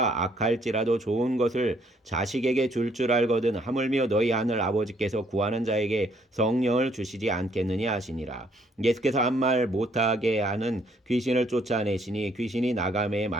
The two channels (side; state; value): both; normal; correlation 0.67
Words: 악할지라도 좋은 것을 자식에게 줄 알거든 하물며 너희 하늘 아버지께서 구하는 자에게 성령을 주시지 않겠느냐 하시니라. 예수께서 한 말 못하게 하는 귀신을 쫓아내시니 귀신이 나가매